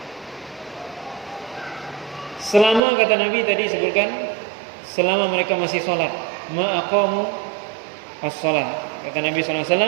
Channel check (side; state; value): left; drops out; at 2.8 s